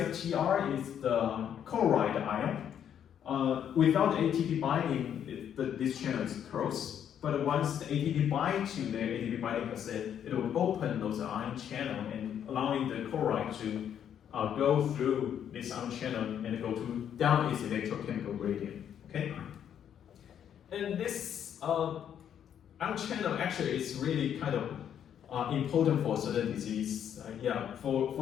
is the chloride ion. Without ATP binding, this channel is closed. But once the ATP binds to the ATP binding cassette, it will open those ion channel and allowing the chloride to go through this ion channel and go down its electrochemical gradient. Okay, and this ion channel actually is really kind of important for certain disease.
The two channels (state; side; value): quieter; right; 9.2 dB